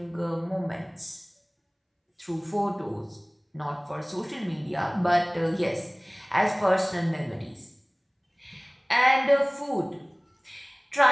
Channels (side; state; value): both; identical; correlation 1.00